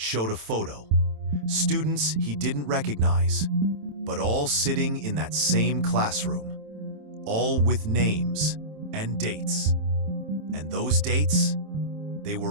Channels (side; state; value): left; late; 27 ms